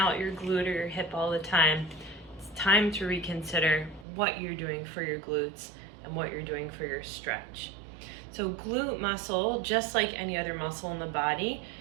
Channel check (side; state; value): left; drops out; at 4.0 s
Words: your glute or your hip all the time, it's time to reconsider what you're doing for your glutes and what you're doing for your stretch. So glute muscle, just like any other muscle in the body,